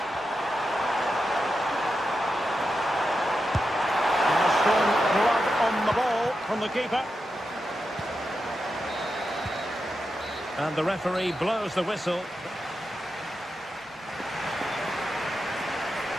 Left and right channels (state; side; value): normal; both; correlation 0.88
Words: And a strong blood on the ball from the keeper. And the referee blows the whistle.